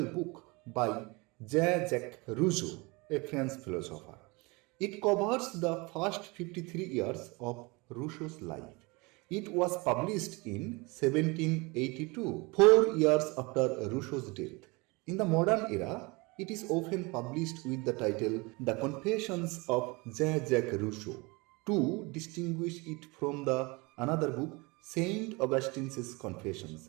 book by Jean-Jacques Rousseau, a French philosopher. It covers the first 53 years of Rousseau's life. It was published in 1782, 4 years after Rousseau's death. In the modern era, it is often published with the title The Confessions of Jean-Jacques Rousseau to distinguish it from the another book, Saint Augustine's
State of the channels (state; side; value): quieter; left; 26.3 dB